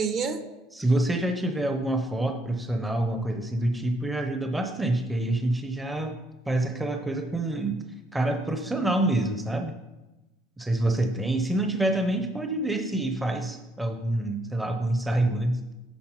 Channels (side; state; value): both; normal; correlation 0.73